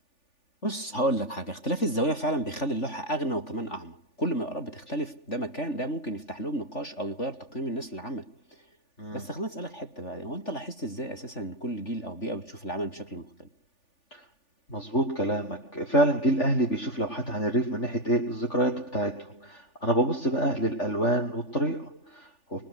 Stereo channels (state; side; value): late; right; 3.4 ms